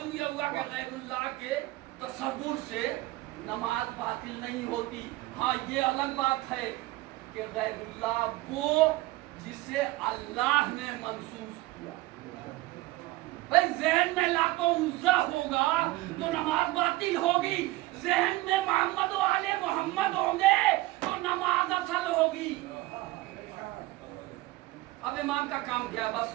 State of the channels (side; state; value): left; quieter; 18.6 dB